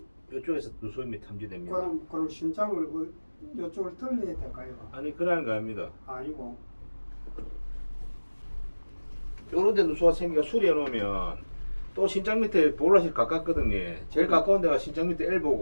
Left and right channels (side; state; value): both; inverted; correlation -1.00